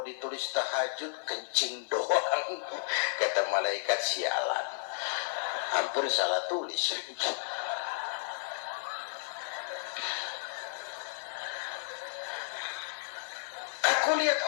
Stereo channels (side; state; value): right; silent; digital silence